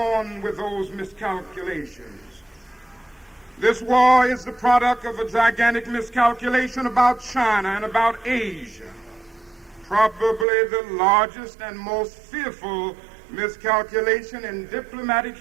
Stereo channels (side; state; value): left; drops out; at 10.5 s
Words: with those miscalculations. This war is the product of a gigantic miscalculation about China and about Asia, probably the largest and most fearful miscalculation in diplomatic